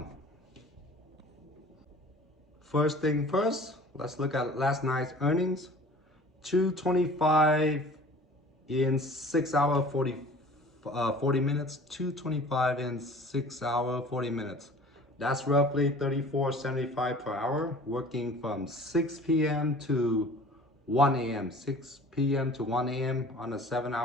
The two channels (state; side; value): normal; both; correlation 0.45